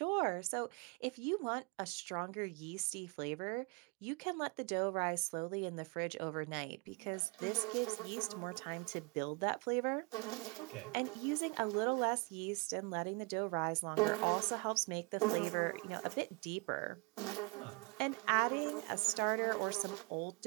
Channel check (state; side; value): quieter; left; 30.3 dB